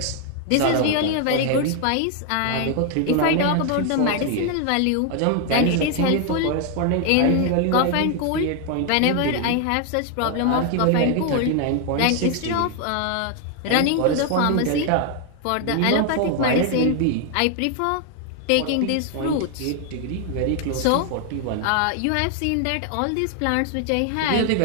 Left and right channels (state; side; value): different; both; correlation 0.00